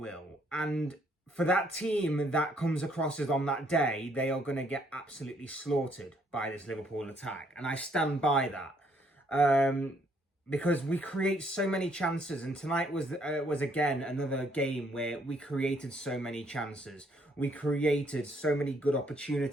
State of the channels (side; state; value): both; normal; correlation 0.68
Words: And for that team that comes across as on that day, they are going to get absolutely slaughtered by this Liverpool attack. And I stand by that. Because we create so many chances. And tonight was again another game where we created so many chances. We created so many good